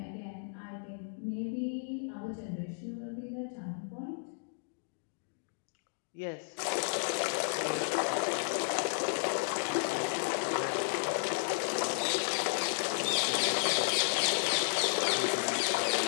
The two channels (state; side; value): silent; right; digital silence